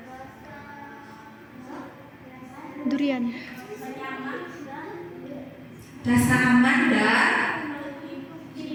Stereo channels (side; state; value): both; identical; correlation 1.00